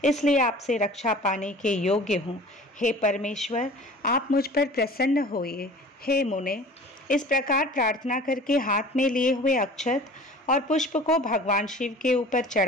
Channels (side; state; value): both; normal; correlation 0.44